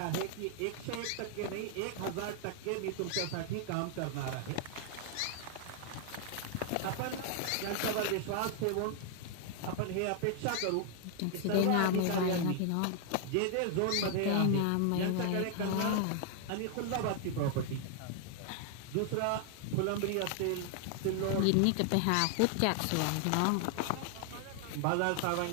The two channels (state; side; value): different; both; correlation 0.00